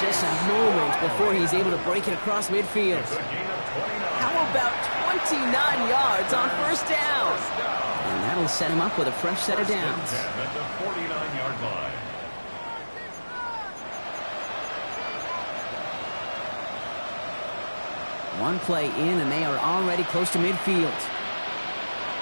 a moment before he's able to break it across midfield. How about 29 yards on first down? And that'll set him up with a fresh set of downs. At the 49-yard line. One play in, and they are already close to midfield.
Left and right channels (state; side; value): inverted; both; correlation -1.00